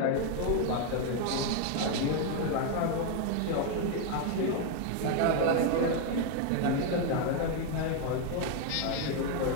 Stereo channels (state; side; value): different; both; correlation 0.01